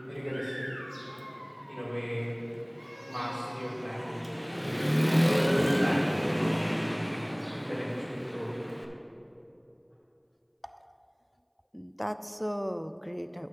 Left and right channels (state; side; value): identical; both; correlation 1.00